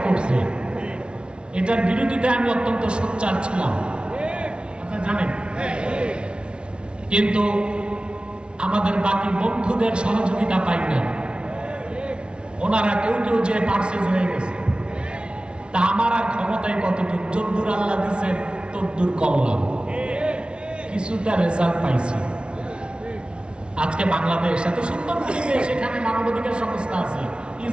করছে। এটার বিরোধিতায় আমি অত্যন্ত সোচ্চার ছিলাম, আপনারা জানেন। কিন্তু আমাদের বাকি বন্ধুদের সহযোগিতা পাই না, ওনারা কেউ কেউ যে পার্সেস হয়ে গেছে। তা আমার আর ক্ষমতায় কতটুকু, যদ্দূর আল্লাহ দিচ্ছেন তদ্দূর করলাম, কিছুটা রেজাল্ট পাইছি। আজকে বাংলাদেশ এত সুন্দর পরিবেশ, এখানে মানবাধিকার সংস্থা আছে,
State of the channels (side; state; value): left; late; 0.057 ms